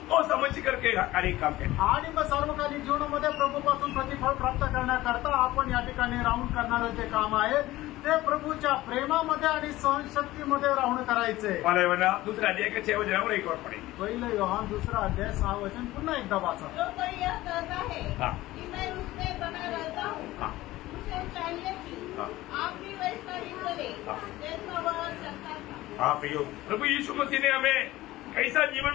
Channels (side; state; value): right; quieter; 17.1 dB